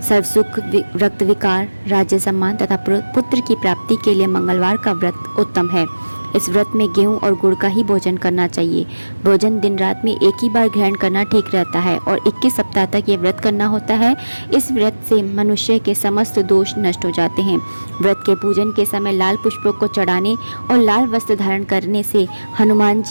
सर्व सुख, रक्त विकार, राज्य सम्मान तथा पुत्र की प्राप्ति के लिए मंगलवार का व्रत उत्तम है। इस व्रत में गेहूं और गुड़ का ही भोजन करना चाहिए। भोजन दिन रात में एक ही बार ग्रहण करना ठीक रहता है और 21 सप्ताह तक ये व्रत करना होता है। इस व्रत से मनुष्य के समस्त दोष नष्ट हो जाते हैं। व्रत के पूजन के समय लाल पुष्पों को चढ़ाने और लाल वस्त्र धारण करने से हनुमान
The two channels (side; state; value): both; inverted; correlation -1.00